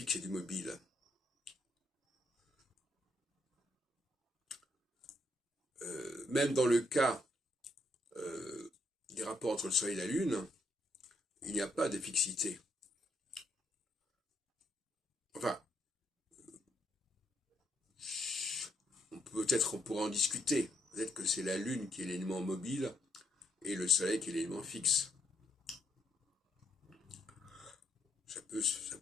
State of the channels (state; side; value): normal; both; correlation 0.74